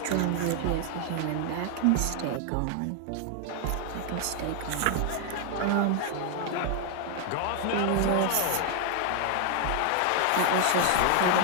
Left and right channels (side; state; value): both; different; correlation 0.00